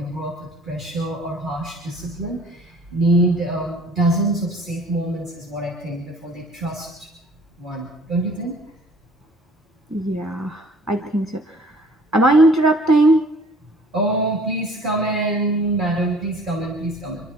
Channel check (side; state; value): both; normal; correlation 0.52